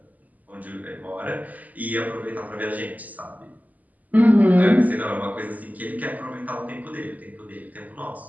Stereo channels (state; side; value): late; left; 0.079 ms